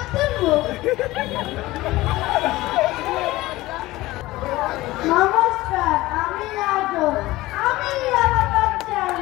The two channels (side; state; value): right; quieter; 18.4 dB